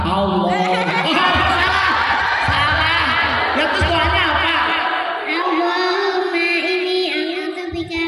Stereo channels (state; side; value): identical; both; correlation 1.00